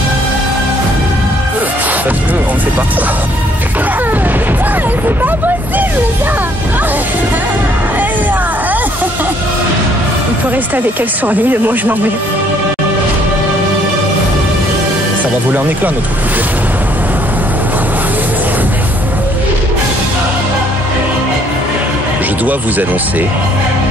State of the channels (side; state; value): both; normal; correlation 0.64